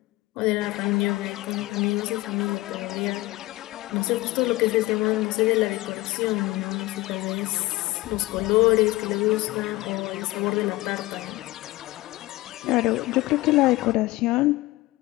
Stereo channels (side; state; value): right; quieter; 19.7 dB